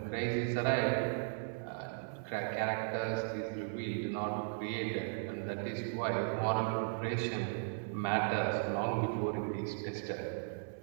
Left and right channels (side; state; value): left; silent; digital silence